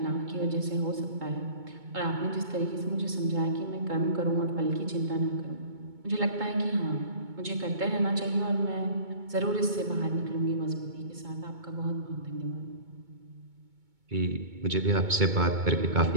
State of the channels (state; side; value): late; left; 2.2 ms